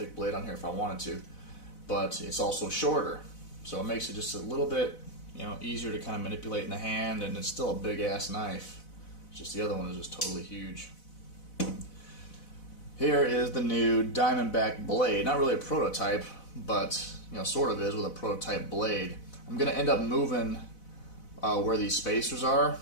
blade on here if I wanted to. But it's also shorter. So it makes it just a little bit, you know, easier to kind of manipulate in the hand, and it's still a big-ass knife. It's just the other one is just totally huge. Here is the new Diamondback blade. Not really a prototype, but you know, sort of is with a prototype blade. I'm going to end up moving where these spacers are.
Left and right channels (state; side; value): late; right; 4.0 ms